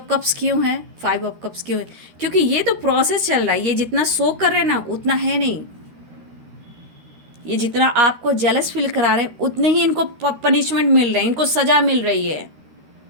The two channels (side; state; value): left; late; 13 ms